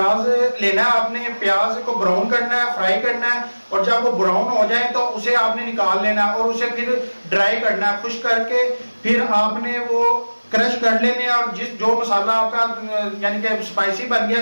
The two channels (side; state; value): both; inverted; correlation -1.00